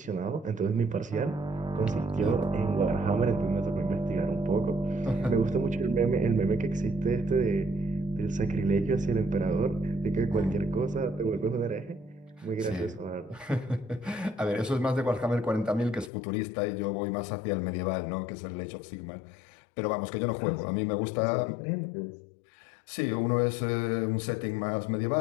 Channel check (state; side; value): drops out; right; at 16.1 s